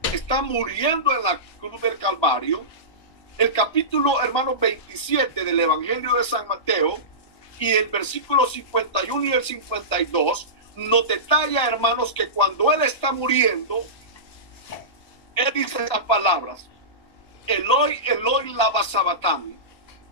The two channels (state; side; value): late; right; 1.5 ms